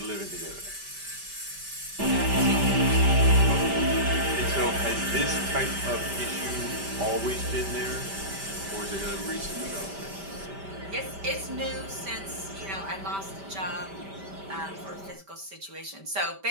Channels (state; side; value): late; left; 5.1 ms